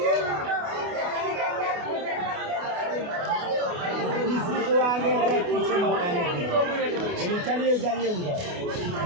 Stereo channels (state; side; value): late; left; 28 ms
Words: चलिए जाइए उधर